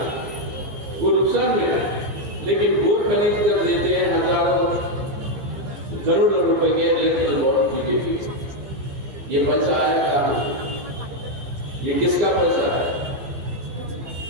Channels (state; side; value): late; left; 14 ms